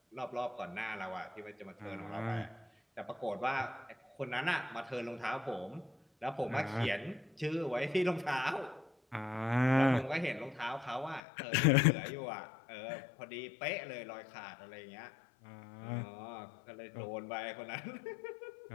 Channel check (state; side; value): drops out; right; at 11.2 s